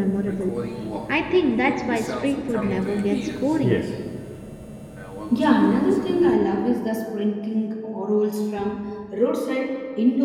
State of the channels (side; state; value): both; identical; correlation 1.00